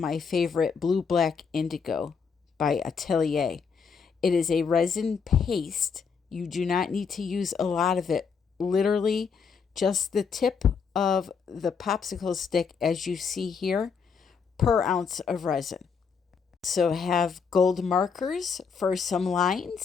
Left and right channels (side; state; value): right; quieter; 5.9 dB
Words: favorite Blue Black Indigo by Atelier. It is a resin paste. You do not need to use a lot of it. Literally, just the tip of the popsicle stick, as you see here, per ounce of resin. So have gold markers for some